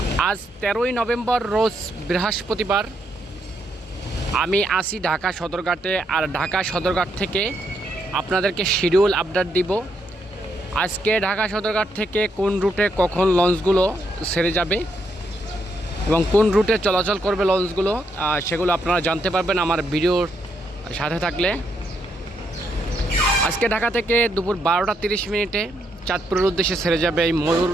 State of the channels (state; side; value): normal; both; correlation 0.77